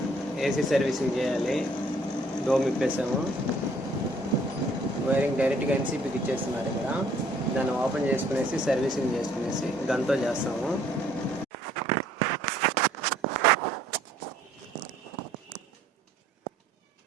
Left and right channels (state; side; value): normal; both; correlation 0.61